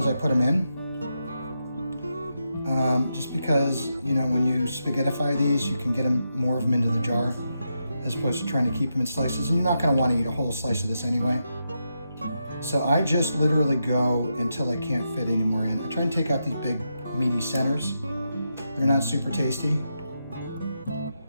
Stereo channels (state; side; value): inverted; both; correlation -0.85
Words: I put them in. just because, you know, when you spaghettify these, you can get more of them into the jar as opposed to trying to keep them in slices, and you're not going to want to eat a whole slice of this anyway. So I just literally go until I can't fit any more in. I try and take out these big meaty centers. They're not super tasty.